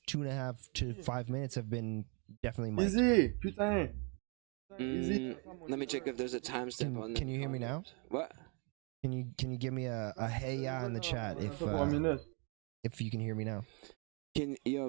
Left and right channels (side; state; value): left; quieter; 34.7 dB